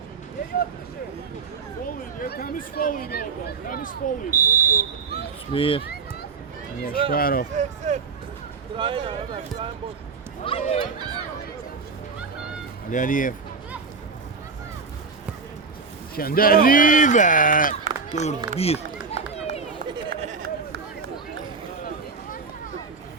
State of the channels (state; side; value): quieter; left; 4.8 dB